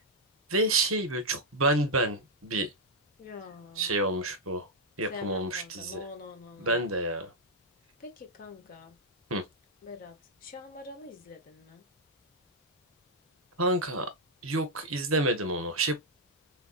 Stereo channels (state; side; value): normal; both; correlation -0.03